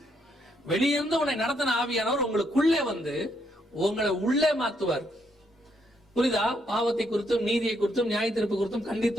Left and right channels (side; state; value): both; normal; correlation 0.75